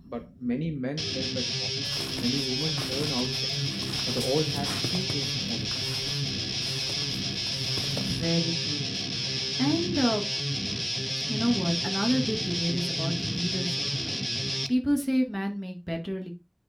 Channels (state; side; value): identical; both; correlation 1.00